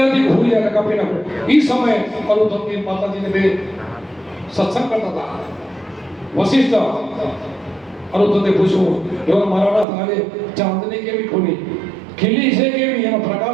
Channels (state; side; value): drops out; left; at 9.9 s